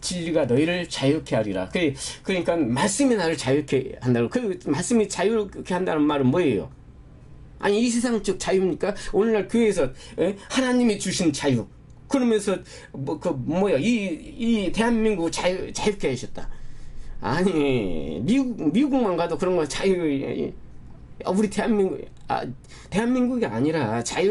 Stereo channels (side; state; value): both; identical; correlation 1.00